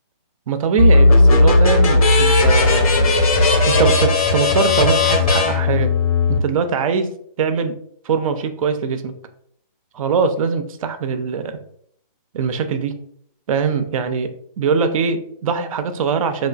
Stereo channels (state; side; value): inverted; both; correlation -0.54